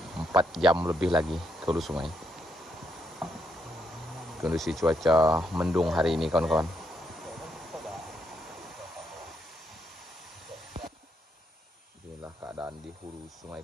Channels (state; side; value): normal; both; correlation 0.77